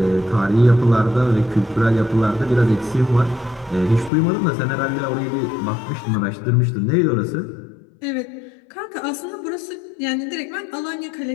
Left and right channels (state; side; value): drops out; right; at 4.1 s